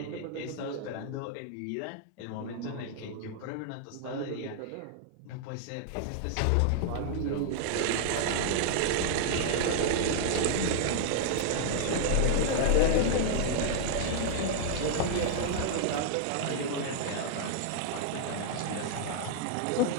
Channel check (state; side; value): different; both; correlation -0.01